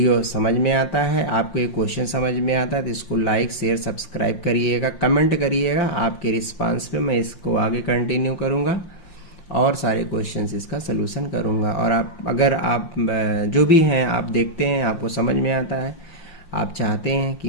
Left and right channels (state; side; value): late; right; 5.7 ms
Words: समझ में आता है, आपको ये क्वेश्चन समझ में आता है, तो इसको लाइक शेयर सब्सक्राइब करिएगा, कमेंट करिएगा। आपके रिस्पांस पे मैं इसको आगे कंटिन्यू करूँगा और सारे क्वेश्चंस इसका सलूशन करूँगा। और अगर आप जो भी हैं आप देखते हैं, आपको समझ में आता है, आप चाहते हैं कि